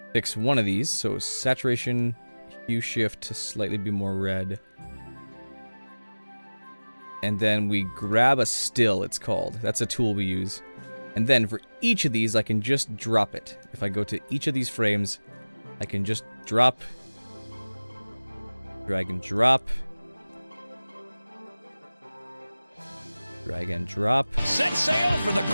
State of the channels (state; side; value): inverted; both; correlation -0.99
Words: fix one of these. So saturation, hue shift to slightly be more red. And then we grab a still, it's called. That's a tool we use. And then for each of these, I can just drop it. If I go to each of these frames, I can just drop, drag and drop, drag and drop. Set sail for the